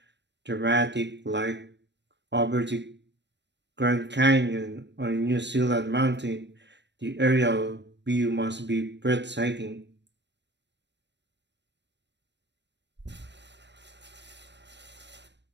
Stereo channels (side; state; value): left; late; 0.51 ms